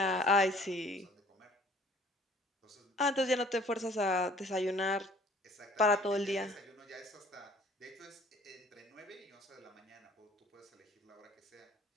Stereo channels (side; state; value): both; normal; correlation 0.54